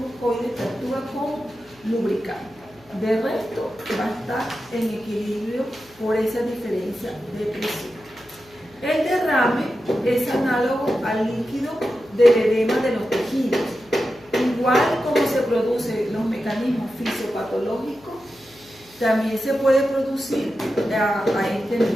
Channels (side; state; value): left; noise; hum, 28 dB below the sound